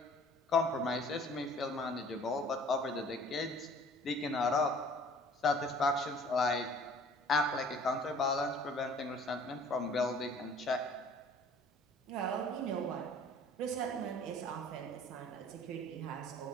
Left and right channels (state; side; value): normal; both; correlation 0.51